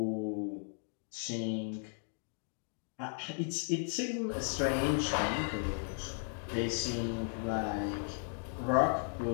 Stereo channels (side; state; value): right; silent; 54 dB below the other